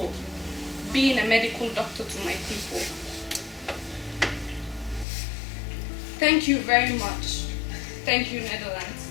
being a medical doctor to my people. Thank you very much. Thank you, Netherlands.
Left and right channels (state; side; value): drops out; right; at 5.1 s